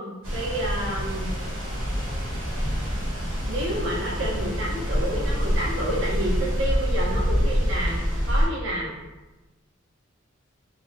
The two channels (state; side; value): normal; both; correlation 0.72